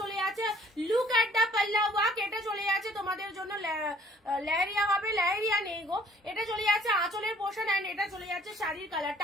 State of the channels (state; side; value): normal; both; correlation 0.57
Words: চলে যাচ্ছে, লুক এট দা পাল্লা ওয়ার্ক, এটা চলে যাচ্ছে তোমাদের জন্য লেহেরিয়া হবে, লেহেরিয়া নেই গো, এটা চলে যাচ্ছে আঁচলের পোর্শন এন্ড এটা চলে যাচ্ছে শাড়ির